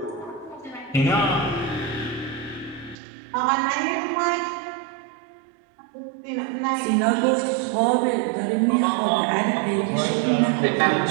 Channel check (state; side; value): drops out; left; at 3.0 s